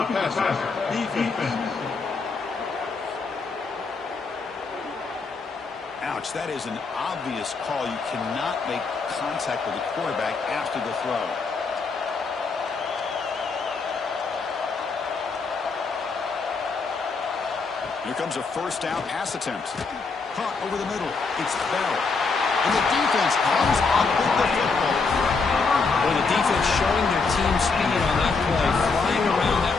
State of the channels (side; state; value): right; quieter; 4.5 dB